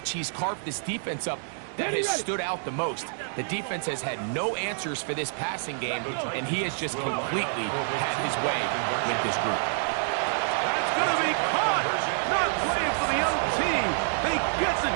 he's carved this defense up that has stood out the most. The defense has had no answers for this passing game, and he has just completely had his way with this group. That's going to be caught. Not playing for the young team. They get the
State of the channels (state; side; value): silent; left; digital silence